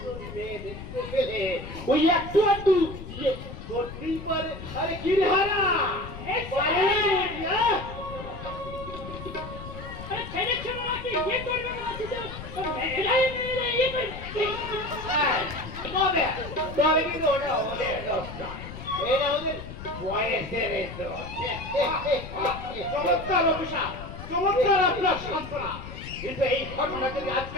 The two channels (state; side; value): noise; left; rumble, 11 dB below the sound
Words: মেয়ে দেখতে পেলে ওই একটু একটু ইয়ে করতেই পারে। আরে কি রে হারা, পারে নাকি, হ্যাঁ? তবে তবে কিন্তু ওটা ওদের দোষ নয়, এটা ওদের বয়সের দোষ। চমৎকার অফিসার, চমৎকার আপনার সান্ত্বনা। কিন্তু এই ঘটনা যদি